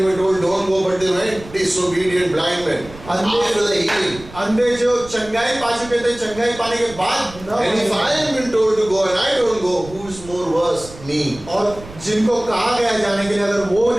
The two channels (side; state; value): right; noise; rumble, 17 dB below the sound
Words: were told don't go, but they went. Disobedient blind men. After the healing. अंधे जो चंगाई पा चुके थे, चंगाई पाने के बाद न And if I am been told to go and I don't go, who is more worse? Me. और जिनको कहा गया जाने के लिए अगर वो